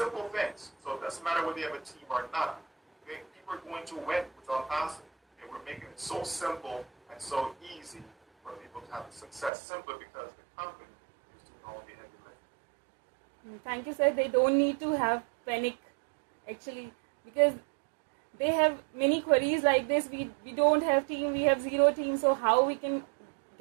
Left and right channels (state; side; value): drops out; left; at 9.5 s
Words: things. So it doesn't matter whether you have a team or not. Okay? People are going to win with unpassive. Okay? We're making it so simple and so easy for people to have the success simply because the company is doing all the heavy lifting. Thank you, sir. They don't need to have panic, actually, because they have many queries like this. We don't have team, we have zero team, so how we can